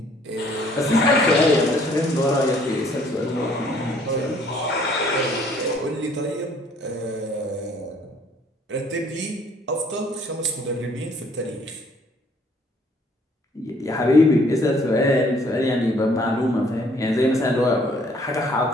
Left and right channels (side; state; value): both; normal; correlation 0.61